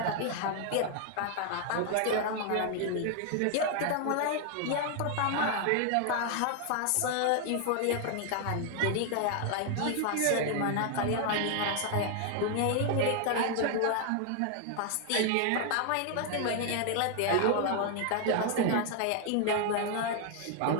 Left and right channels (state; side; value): different; both; correlation 0.00